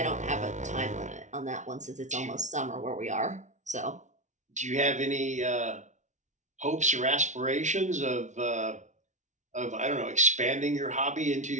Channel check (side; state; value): left; late; 0.35 ms